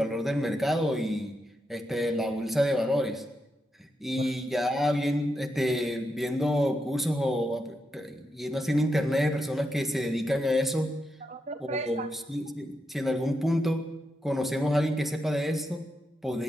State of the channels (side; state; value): both; normal; correlation 0.84